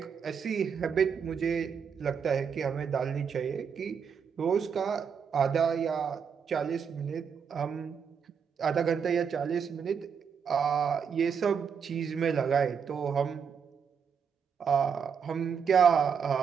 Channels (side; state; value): left; quieter; 6.8 dB